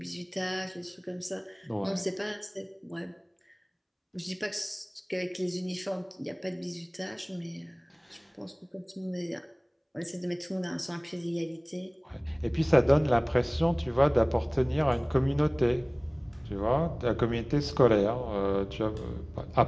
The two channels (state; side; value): identical; both; correlation 1.00